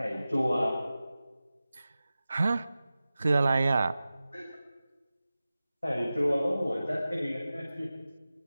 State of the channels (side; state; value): both; inverted; correlation -0.95